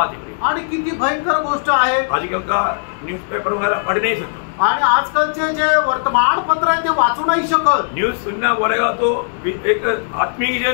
है आणि किती भयंकर गोष्ट आहे। आजकल का न्यूज़पेपर वगैरह पढ़ नहीं सकता आणि आजकालचे जे वर्तमानपत्र आहे ते वाचू नाही शकत। न्यूज सुनना बोलेगा तो एक आत्मिक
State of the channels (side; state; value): right; silent; digital silence